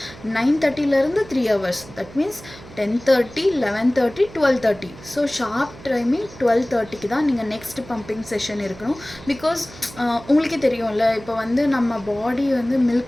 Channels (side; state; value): right; noise; hum, 18 dB below the sound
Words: 9:30லேருந்து 3 hours. That means 10:30, 11:30, 12:30. So sharp timing 12:30க்கு தான் நீங்கள் நெக்ஸ்ட் பம்பிங் செஷன் இருக்கணும். பிகாஸ் உங்களுக்கே தெரியும்ல, இப்போ வந்து நம்ம பாடி வந்து